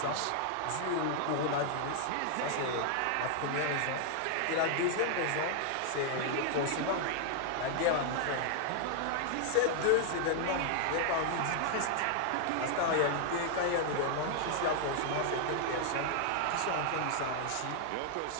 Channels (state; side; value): different; both; correlation 0.00